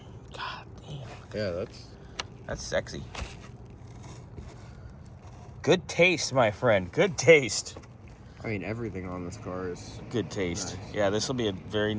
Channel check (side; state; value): both; identical; correlation 1.00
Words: God damn. Yeah, that's sexy. Good taste, my friend. Good taste. I mean, everything on this car is good taste. Nice. Yeah, this will be a very